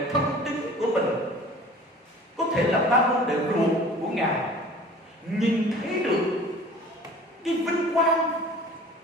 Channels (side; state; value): both; normal; correlation 0.45